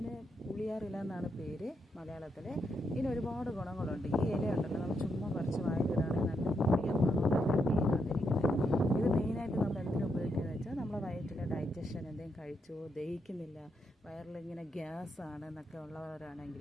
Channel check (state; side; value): normal; both; correlation 0.80